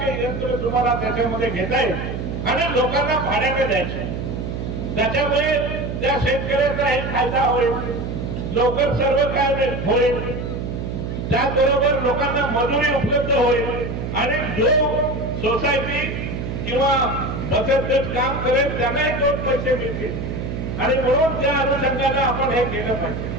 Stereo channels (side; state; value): right; noise; hum, 5 dB below the sound